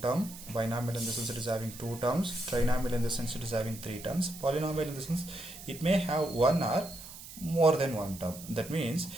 term, binomial in the sense it is having two terms, trinomial in the sense it is having three terms, polynomial in the sense it may have one or more than one term. That means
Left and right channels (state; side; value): noise; right; hiss, 14 dB below the sound